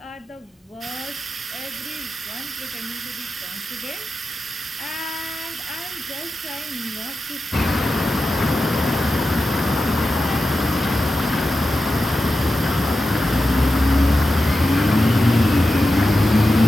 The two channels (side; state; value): both; normal; correlation 0.91